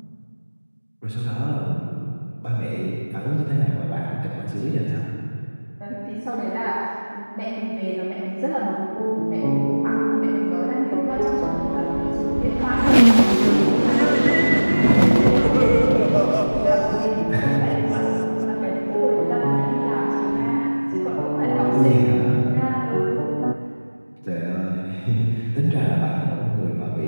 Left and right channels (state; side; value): inverted; both; correlation -1.00